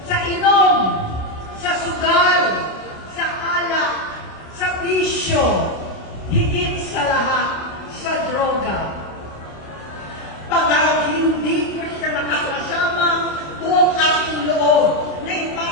sa inom, sa sugal, sa alak, sa bisyo, higit sa lahat, sa droga. Pagka hindi ko siya nakakasama, buong aking loob na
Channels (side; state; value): right; late; 27 ms